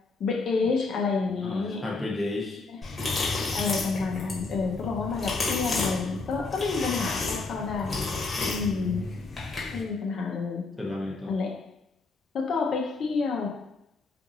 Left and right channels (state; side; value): quieter; right; 3.8 dB